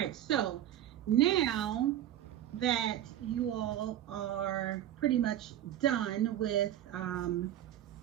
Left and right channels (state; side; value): quieter; left; 11.9 dB